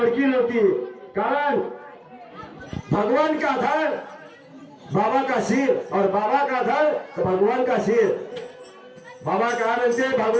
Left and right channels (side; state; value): both; identical; correlation 1.00